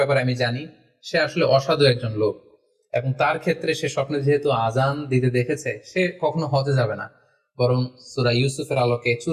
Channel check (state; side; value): identical; both; correlation 1.00